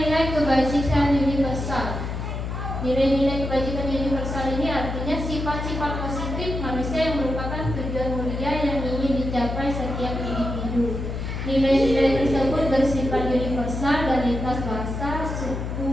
kebajikan universal. Nilai-nilai kebajikan universal ini artinya sifat-sifat positif manusia yang merupakan tujuan mulia yang ingin dicapai setiap individu. Nilai-nilai tersebut bersifat universal dan lintas bahasa,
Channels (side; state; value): left; noise; hum, 4 dB below the sound